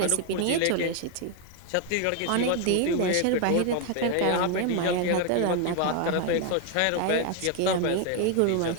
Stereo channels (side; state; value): both; different; correlation 0.01